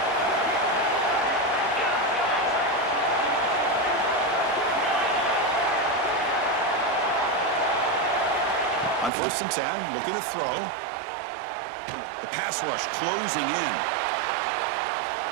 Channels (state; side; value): drops out; left; at 9.1 s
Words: On 1st and 10, looking to throw. The pass rush closing in.